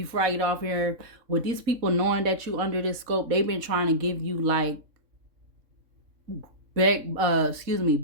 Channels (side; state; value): left; late; 3.7 ms